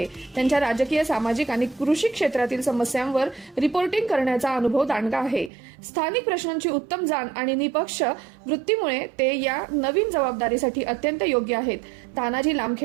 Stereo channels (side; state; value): left; drops out; at 5.5 s